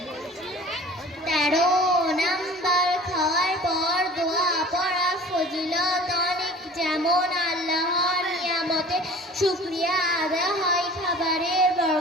13 নাম্বার, খাওয়ার পর দোয়া পড়া ফজিলত অনেক, যেমন আল্লাহর নিয়ামতে শুকরিয়া আদায় হয়, খাবারের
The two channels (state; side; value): normal; both; correlation 0.45